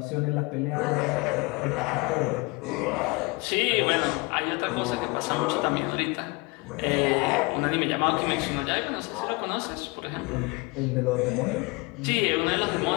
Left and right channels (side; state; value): right; quieter; 26.8 dB